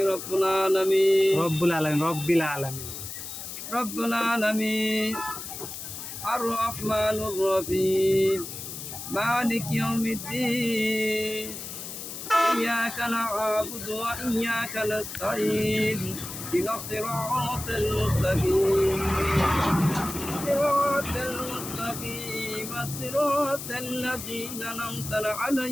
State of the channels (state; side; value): noise; left; hiss, 9 dB below the sound